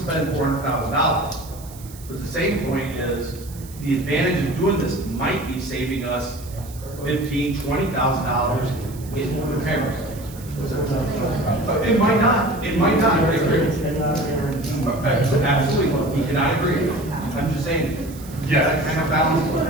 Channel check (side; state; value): right; noise; hiss, 19 dB below the sound